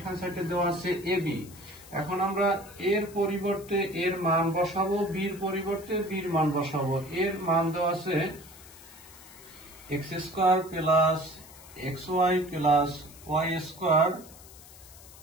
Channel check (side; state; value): left; noise; hiss, 20 dB below the sound